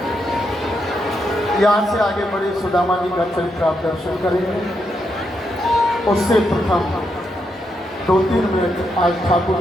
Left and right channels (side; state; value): both; normal; correlation 0.81